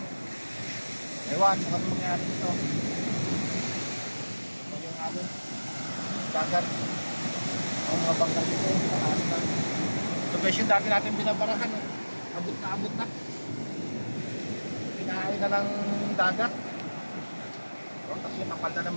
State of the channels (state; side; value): inverted; both; correlation -1.00